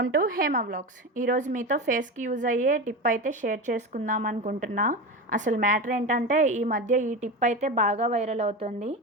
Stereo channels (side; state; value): both; normal; correlation 0.23